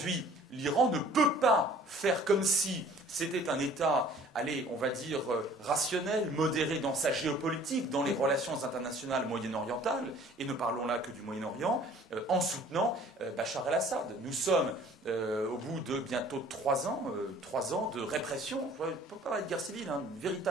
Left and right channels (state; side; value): normal; both; correlation 0.52